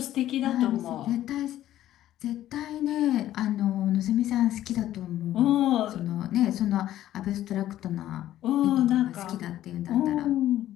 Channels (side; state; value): right; quieter; 13.1 dB